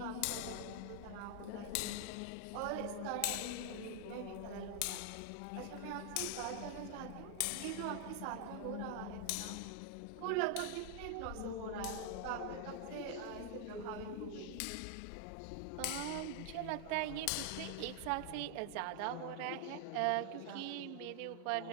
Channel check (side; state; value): both; different; correlation 0.00